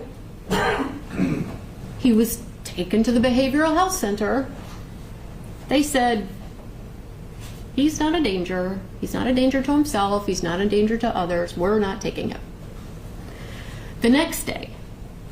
He was taken to the behavioral health center. They said, "He's not a danger. He's not a danger to himself. He's not a danger to others. We're not taking him." The next day,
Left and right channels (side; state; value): both; identical; correlation 1.00